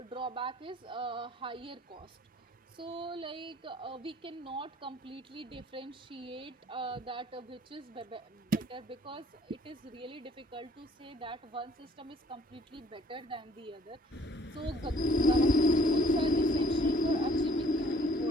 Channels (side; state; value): both; normal; correlation 0.58